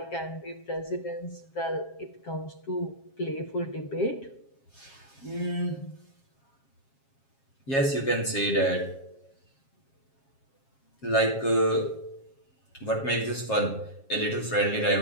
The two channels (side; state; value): right; late; 7.4 ms